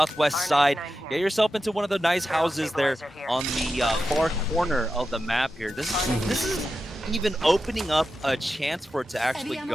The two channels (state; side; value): normal; both; correlation 0.91